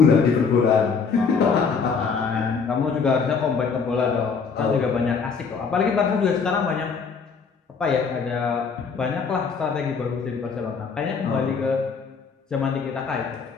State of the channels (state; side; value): quieter; right; 5.5 dB